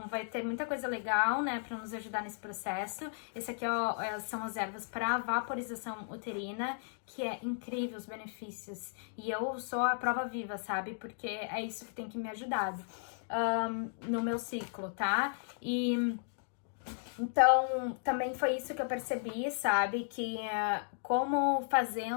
vai ter muita coisa legal, né, pra nos ajudar nesse processo. Esse aqui são as ervas para vaporização uterina, que é incrível os benefícios. E eu sou a prova viva, sabe? Porque é isso que tem que me ajudar no meu ciclo, tá? E então, também foi isso que eu percebi, sabe? Que como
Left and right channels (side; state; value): right; silent; digital silence